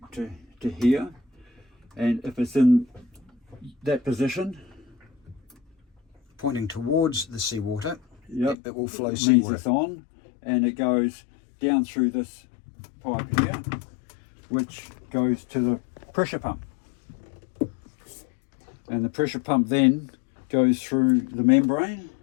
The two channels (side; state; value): right; drops out; at 8.6 s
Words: here, and if it's in that position, pointing towards the seawater, yep, it will flow means seawater. it's on, and it goes down through this pipe here, which goes to the pressure pump. And the pressure pump then goes through the membrane,